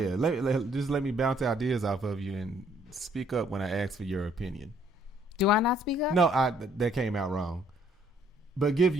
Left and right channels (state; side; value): normal; both; correlation 0.64